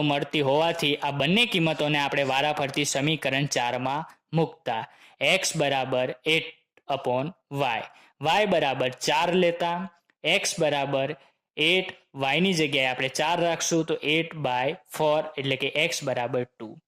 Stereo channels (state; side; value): identical; both; correlation 1.00